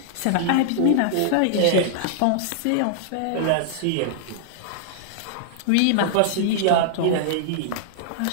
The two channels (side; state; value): both; different; correlation -0.01